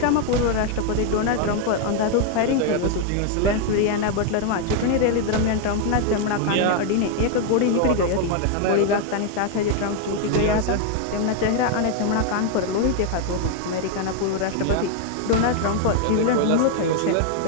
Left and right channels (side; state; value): both; different; correlation 0.01